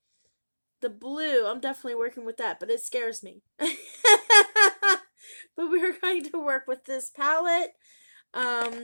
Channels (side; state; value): both; inverted; correlation -1.00